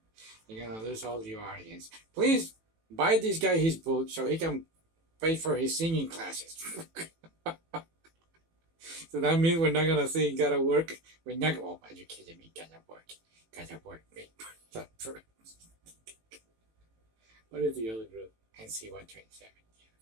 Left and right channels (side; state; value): left; late; 18 ms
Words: You're gonna lose all your audience. Please buy this guy his book so he can pay for his singing classes. So that means we're not gonna sing "Gotta Work." We're not. Oh, are you kidding me? Gotta work. Wait. What is the other group? NC127.